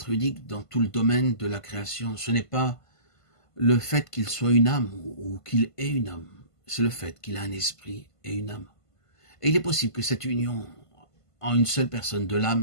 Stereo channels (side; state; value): right; late; 1.5 ms